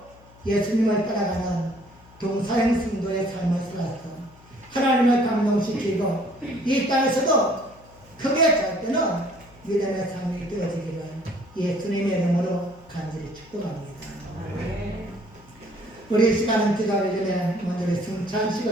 예수님을 따라가는 동사형 성도의 삶을 살아서 하나님을 감동시키고 이 땅에서도 크게 잘 때는 믿음의 삶이 되어지기를 예수님의 이름으로 간절히 축복합니다. 우리 이 시간은 기도하기 전에 먼저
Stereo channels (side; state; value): left; noise; hum, 25 dB below the sound